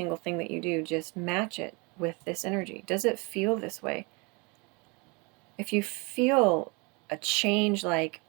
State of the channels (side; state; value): left; quieter; 29.5 dB